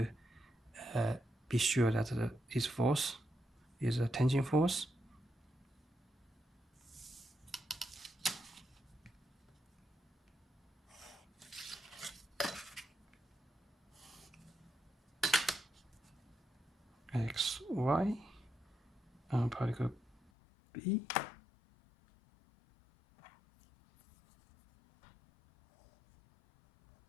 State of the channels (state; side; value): drops out; right; at 20.3 s